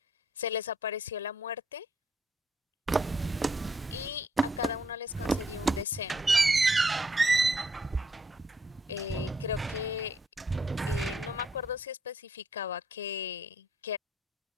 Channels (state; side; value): normal; both; correlation 0.70